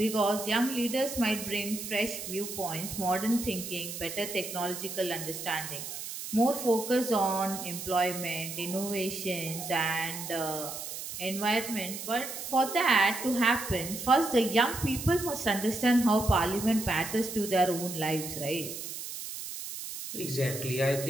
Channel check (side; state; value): right; noise; hiss, 8 dB below the sound